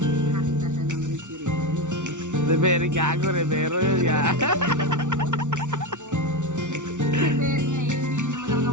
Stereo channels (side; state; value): left; late; 0.86 ms